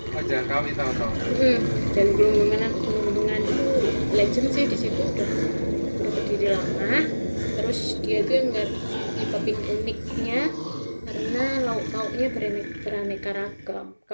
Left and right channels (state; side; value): inverted; both; correlation -1.00